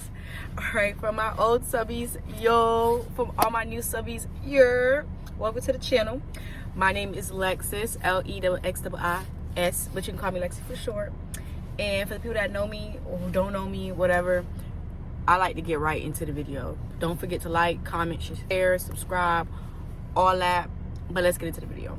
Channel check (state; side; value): identical; both; correlation 1.00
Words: All right, from my old subbies, yo, from all my new subbies, welcome to the channel. My name is Lexis, Lexxiis, but you can call me Lexi for short. And for the people that know me or who don't know me, whatever, I like to get right into the video. Don't forget to like, comment, share, subscribe, all that. But let's get into the video.